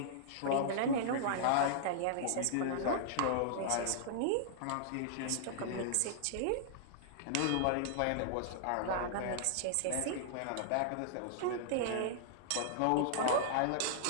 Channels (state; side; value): different; both; correlation -0.02